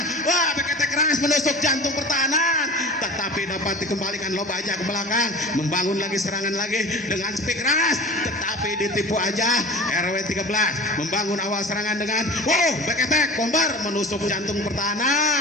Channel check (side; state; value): both; normal; correlation 0.37